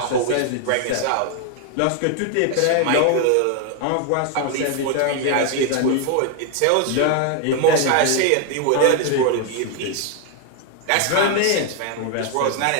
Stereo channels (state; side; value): different; both; correlation 0.01